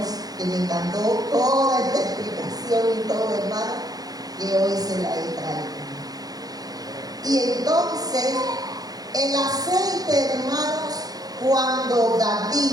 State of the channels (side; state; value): left; late; 0.18 ms